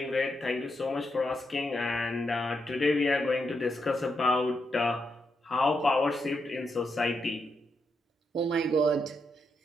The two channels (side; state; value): both; normal; correlation 0.82